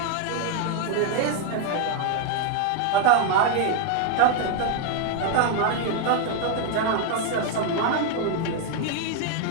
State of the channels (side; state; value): both; different; correlation 0.01